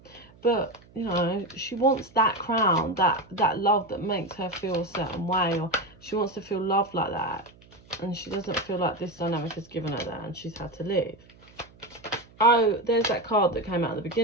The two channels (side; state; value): right; noise; hum, 26 dB below the sound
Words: But, you know, she wants that crown, that love that makes her feel a certain way, or she wants to feel loved like that. And she doesn't feel like this dynamic has given her that, and she's had to leave. Oh, there's that card that came out at the